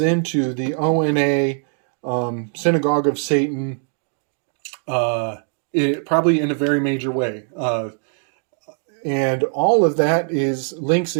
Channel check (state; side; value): silent; left; 60 dB below the other